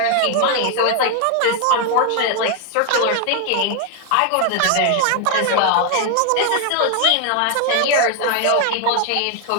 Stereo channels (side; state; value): both; different; correlation 0.00